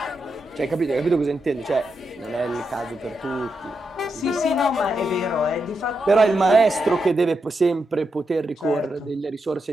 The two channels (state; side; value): normal; both; correlation 0.85